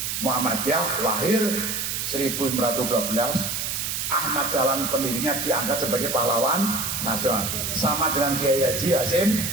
Muhammadiyah lahir 1912, Ahmad Dahlan pendirinya diangkat sebagai pahlawan nasional, sama dengan Kiai Haji Hasyim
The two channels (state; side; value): noise; right; hiss, 2 dB below the sound